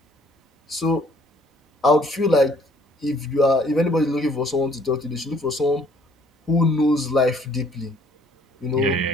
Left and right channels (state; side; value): normal; both; correlation 0.60